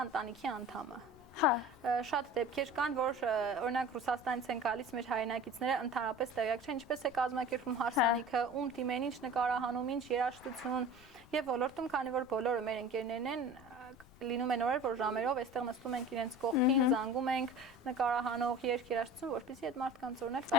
ընտանիքի անդամը շատ դեպքեր կան, որ օրինակ Ռուսաստանից են գալիս մեր հայրենակիցները ընդհանրապես տեղյակ չեն, ինչպես է կազմակերպվում հարսանիքը, ում դիմեն, ինչ նկարահանում, ինչ երաժշտություն եւ ոլորտում, քանի որ բոլորը մեր ընկերներն են, լինում են օրեր, որ ժամերով այստեղ նստում ենք իրենց կողքին, զանգում ենք նկարահանող երաժշտություն, որպեսզի այդ մարդկանց օրինակ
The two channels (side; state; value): left; noise; rumble, 24 dB below the sound